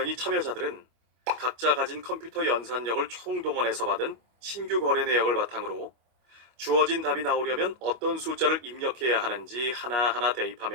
참여자들은 각자 가진 컴퓨터 연산력을 총동원해서 받은 신규 거래 내역을 바탕으로 주어진 답이 나오려면 어떤 숫자를 입력해야 하는지 하나하나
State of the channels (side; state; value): left; late; 25 ms